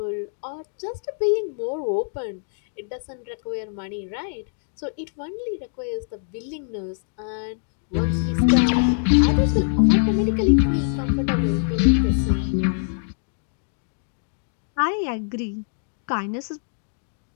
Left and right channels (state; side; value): silent; right; digital silence